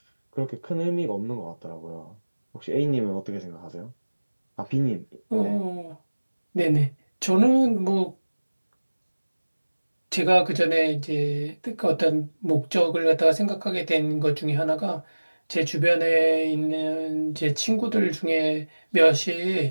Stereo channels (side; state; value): both; inverted; correlation -1.00